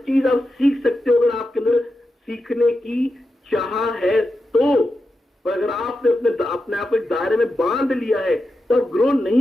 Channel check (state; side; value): normal; both; correlation 0.89